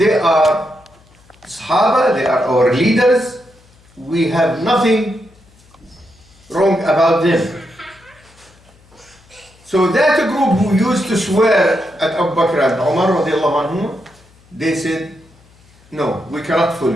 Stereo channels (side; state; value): left; noise; hum, 29 dB below the sound